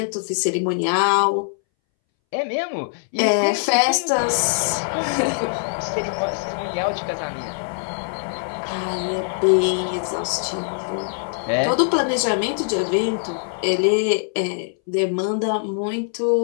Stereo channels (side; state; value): right; silent; 63 dB below the other